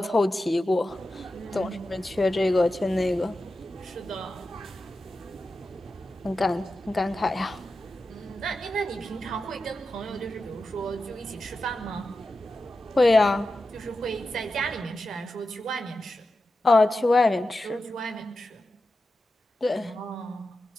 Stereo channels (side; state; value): both; normal; correlation 0.91